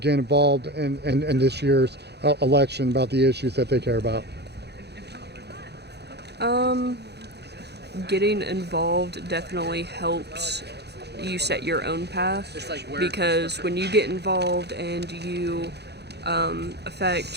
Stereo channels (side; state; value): left; late; 0.48 ms